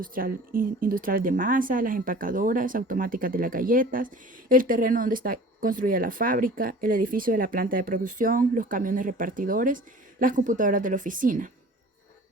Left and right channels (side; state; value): both; normal; correlation 0.44